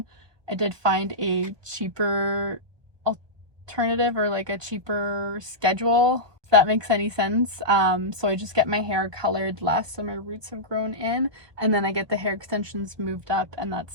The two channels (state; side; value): late; left; 1.2 ms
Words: I did find a cheaper alternative, or like a cheaper schedule, if that makes any sense. So I just get my hair colored less so my roots have grown in, and then I get the hair extensions moved up, and that's